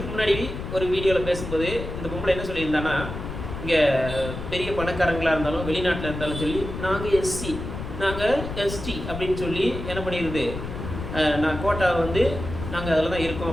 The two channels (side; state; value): left; noise; rumble, 7 dB below the sound